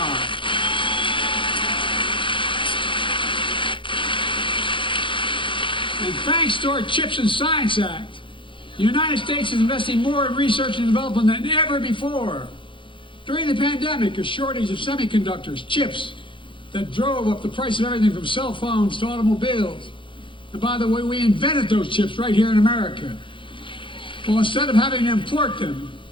And thanks to our CHIPS and Science Act, the United States is investing more in research and development than ever before. During the pandemic, a shortage of semiconductors, chips, that drove up the price of everything from cell phones to automobiles. And by the way, we invented those chips right here in America. Well, instead of having to import them,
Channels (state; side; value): late; right; 0.24 ms